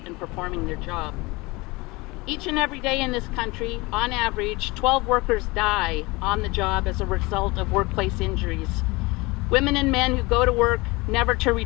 and performing their job. Each and every day in this country, on average, 12 workers die on the job as a result of workplace injuries. Women and men who go to work never to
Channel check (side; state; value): right; quieter; 23.8 dB